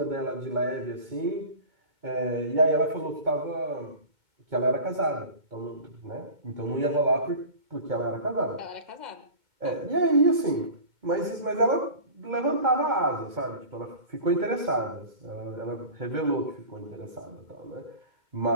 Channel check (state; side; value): late; left; 2.2 ms